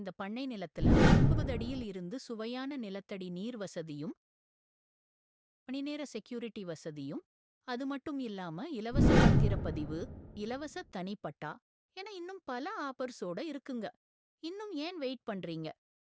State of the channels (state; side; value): identical; both; correlation 1.00